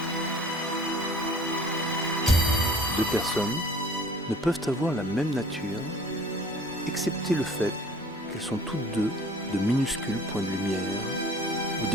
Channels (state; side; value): normal; both; correlation 0.49